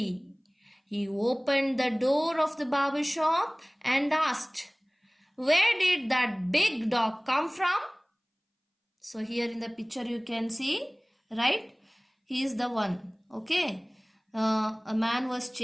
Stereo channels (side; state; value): both; identical; correlation 1.00